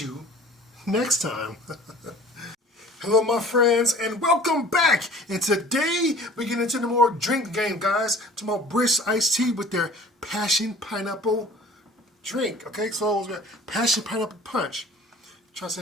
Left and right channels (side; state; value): both; normal; correlation 0.46